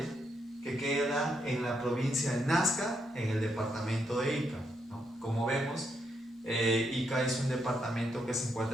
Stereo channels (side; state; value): both; normal; correlation 0.79